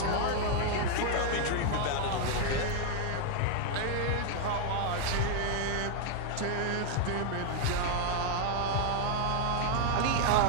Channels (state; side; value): different; both; correlation 0.00